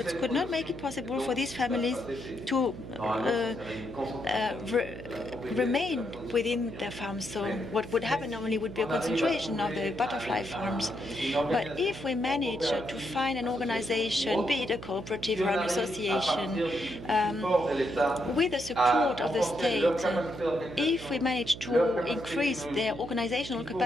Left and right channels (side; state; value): right; noise; hum, 12 dB below the sound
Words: could not make it possible for these families to remain within their farms. So what would happen normally would be a concentration of the butterfly farms. But if we manage to find an organization, be it a cooperative or an association, with the support of the state, if we manage to increase their organizational